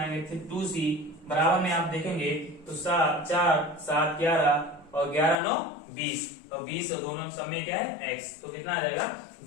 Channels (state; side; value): drops out; right; at 5.4 s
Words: 2c। बराबर में आप देखेंगे तो 4 7 11 और 11 9 20, तो 20 और दोनों सब में क्या है x, तो कितना आ जाएगा